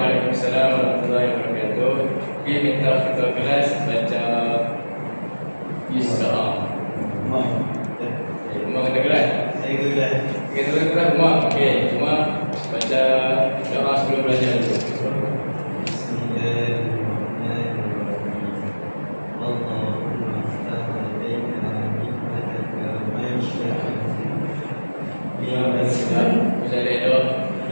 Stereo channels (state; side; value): inverted; both; correlation -1.00